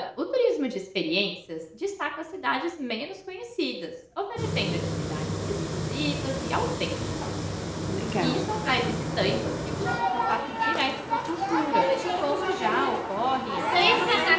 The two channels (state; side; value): identical; both; correlation 1.00